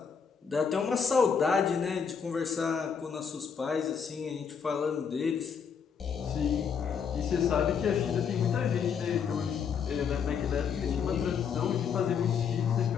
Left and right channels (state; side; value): quieter; right; 6.7 dB